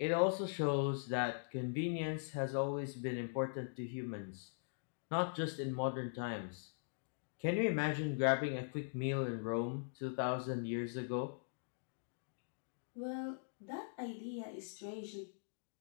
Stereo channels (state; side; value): silent; right; digital silence